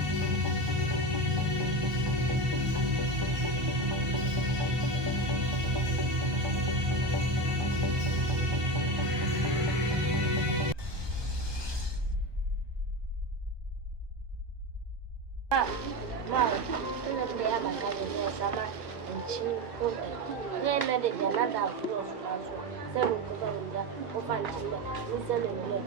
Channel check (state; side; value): late; left; 1.2 ms